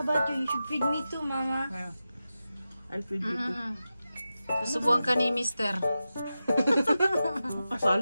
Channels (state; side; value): inverted; both; correlation -0.92